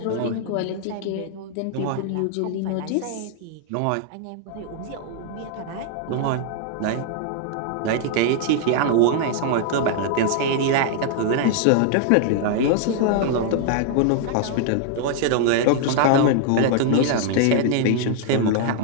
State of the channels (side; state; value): both; different; correlation 0.00